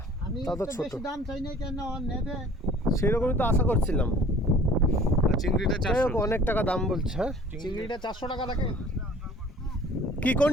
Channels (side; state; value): both; normal; correlation 0.49